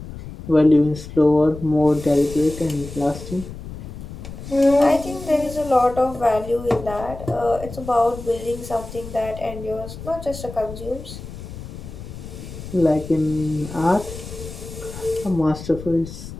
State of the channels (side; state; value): left; noise; rumble, 12 dB below the sound